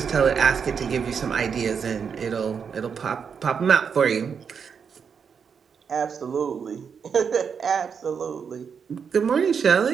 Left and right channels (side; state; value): left; quieter; 6.6 dB